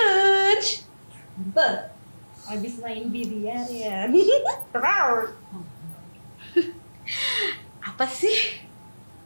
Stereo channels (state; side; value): inverted; both; correlation -1.00